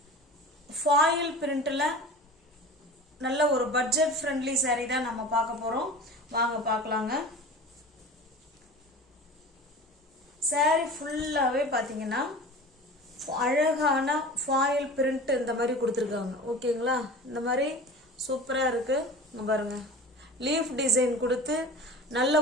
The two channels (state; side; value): normal; both; correlation 0.37